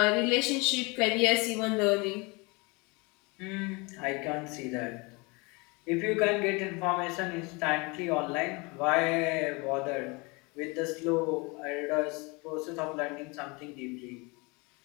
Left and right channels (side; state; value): right; quieter; 27.7 dB